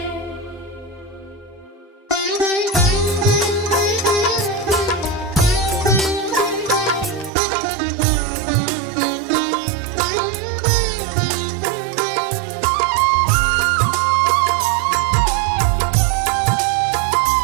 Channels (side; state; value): left; drops out; at 7.3 s